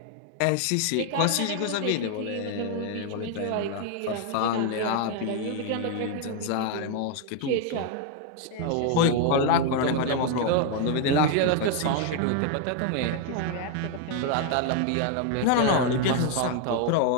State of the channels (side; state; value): both; different; correlation 0.00